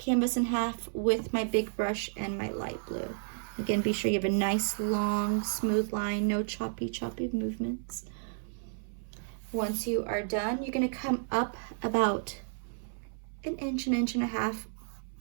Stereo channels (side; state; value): left; silent; 57 dB below the other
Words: in half with my big brush and my light blue. Again, be sure you have a nice, long, smooth line, no choppy movements. Once you are done, you're going to come up about an inch and a half,